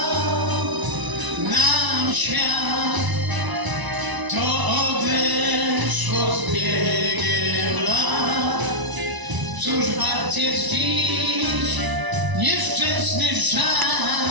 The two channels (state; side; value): late; left; 1.0 ms